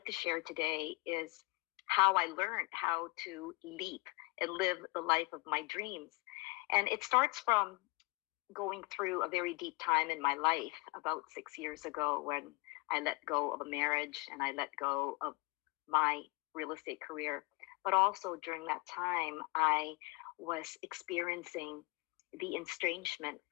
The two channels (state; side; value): quieter; right; 26.0 dB